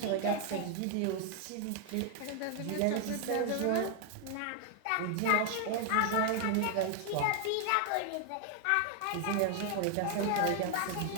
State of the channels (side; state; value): both; different; correlation 0.00